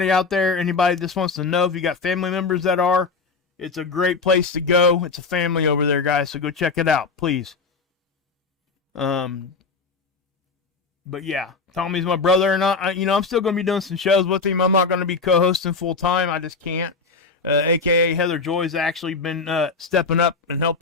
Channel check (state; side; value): quieter; right; 4.5 dB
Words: out there, anybody just wants to know if you got family members that are, it's a great place to go. It's a family over there, guys, so go check it out, please. But yeah, Tommy's my brother, and I'm still going to be doing some shows with him. I'm not going to be co-hosting full time. I just can't. AKA Heather Joy's actually been stepping up and